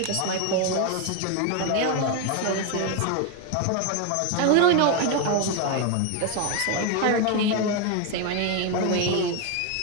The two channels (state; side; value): different; both; correlation 0.01